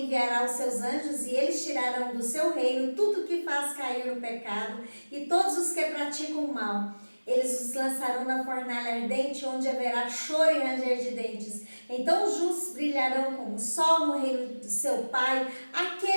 enviará os seus anjos e eles tirarão do seu reino tudo que faz cair no pecado e todos os que praticam o mal. Eles os lançarão na fornalha ardente, onde haverá choro e ranger de dentes. Então os justos brilharão como o sol no reino do seu Pai.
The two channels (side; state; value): both; inverted; correlation -1.00